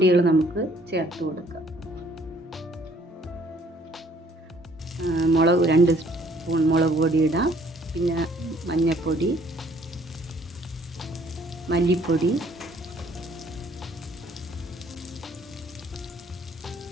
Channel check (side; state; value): both; normal; correlation 0.61